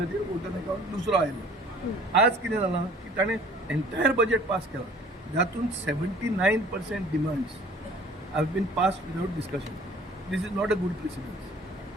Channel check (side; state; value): both; normal; correlation 0.51